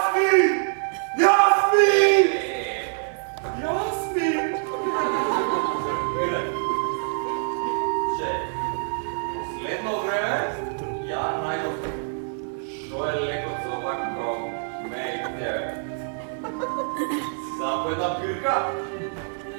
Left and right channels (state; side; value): silent; left; 62 dB below the other